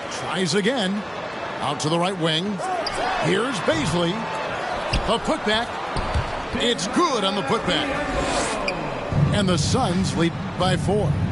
Tries again. Out to the right wing. Here's Baisley. The putback. It's good on the putback. And the Suns lead by 4.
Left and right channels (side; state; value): both; identical; correlation 1.00